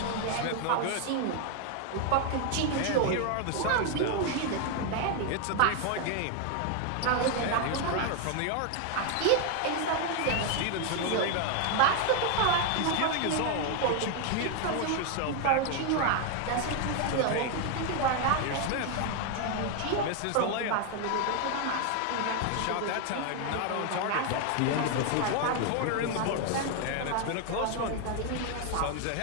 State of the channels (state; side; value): different; both; correlation 0.01